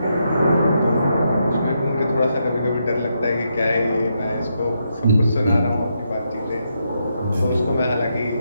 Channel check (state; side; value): inverted; both; correlation -0.81